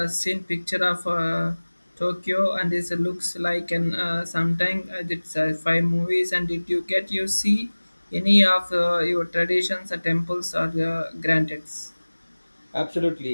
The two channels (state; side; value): inverted; both; correlation -1.00